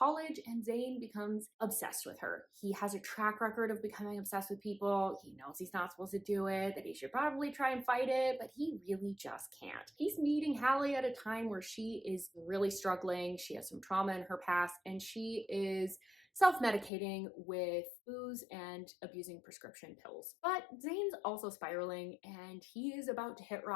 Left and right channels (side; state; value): right; drops out; at 16.9 s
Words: and Zane becomes obsessed with her. He has a track record of becoming obsessed with people. He knows he's not supposed to do it, that he should probably try and fight it, but he really just can't. He's meeting Hallie at a time where she is really struggling. She has some trauma in her past, and she is self-medicating with booze and abusing prescription pills. But Zane's also spiraling, and he is about to hit